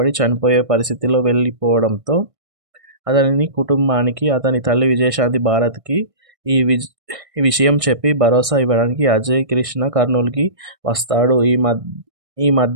చనిపోయే పరిస్థితిలో వెళ్ళిపోవడంతో అతని కుటుంబానికి, అతని తల్లి విజయశాంతి భారత్కి ఈ విషయం చెప్పి భరోసా ఇవ్వడానికి అజయ్ కృష్ణ కర్నూలుకి వస్తాడు. ఈ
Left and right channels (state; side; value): late; left; 1.6 ms